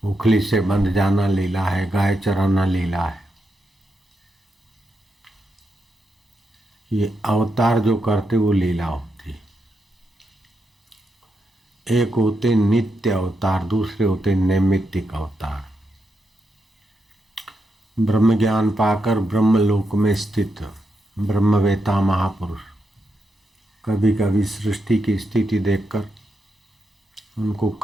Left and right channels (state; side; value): normal; both; correlation 0.84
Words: उखली से बंध जाना लीला है, गाय चराना लीला है। ये अवतार जो करते वो लीला होती। एक होते नित्य अवतार, दूसरे होते नैमित्तिक अवतार। ब्रह्म ज्ञान पाकर ब्रह्मलोक में स्थित ब्रह्मवेता महापुरुष कभी कभी सृष्टि की स्थिति देखकर उनको